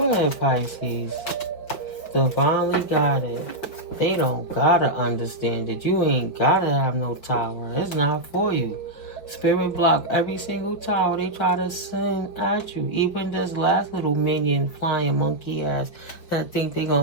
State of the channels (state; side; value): late; right; 5.1 ms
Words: ahead, Pisces. Divinely guided. They don't gotta understand it. You ain't gotta have no tower. It's not for you. Spirit block every single tower they try to send at you. Even this last little minion flying monkey ass that think they